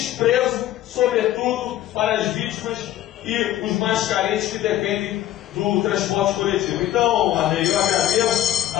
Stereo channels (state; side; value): quieter; right; 13.3 dB